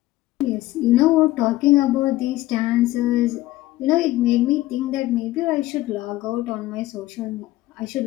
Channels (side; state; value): right; quieter; 16.6 dB